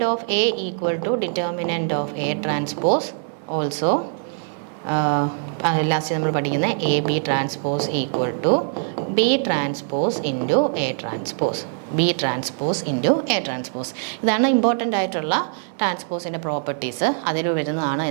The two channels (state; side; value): silent; left; 59 dB below the other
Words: of A equal to determinant of A transpose also. Last നമ്മൾ പഠിക്കുന്ന A B transpose equal to B transpose into A transpose. B transpose into A transpose. ഇതാണ് ഇമ്പോർട്ടൻ്റ് ആയിട്ടുള്ള ട്രാൻസ്പോസിൻ്റെ പ്രോപ്പർട്ടീസ്. അതിൽ വരുന്നതാണ്